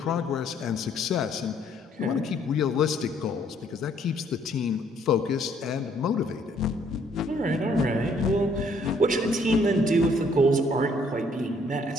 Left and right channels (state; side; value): normal; both; correlation 0.65